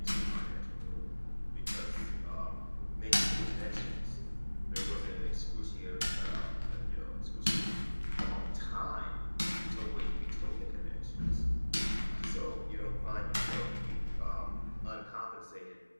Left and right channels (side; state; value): both; inverted; correlation -1.00